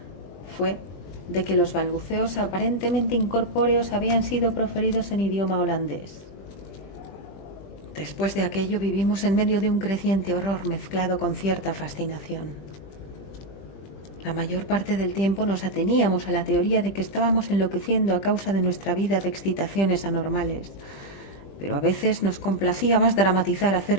fue de que los balbuceos aparentemente incorpóreos habían sido proferidos en idioma holandés. Después de aquello vivimos en medio de un creciente horror mezclado con cierta fascinación. La mayor parte del tiempo nos ateníamos a la teoría de que estábamos enloqueciendo a causa de nuestra vida de excitaciones anormales, pero a veces nos complacía más dramatizar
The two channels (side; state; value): right; late; 20 ms